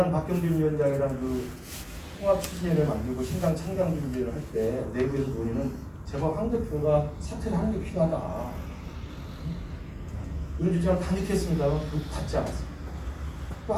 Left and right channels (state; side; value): identical; both; correlation 1.00